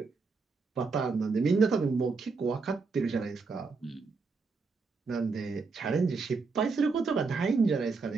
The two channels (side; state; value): left; quieter; 4.4 dB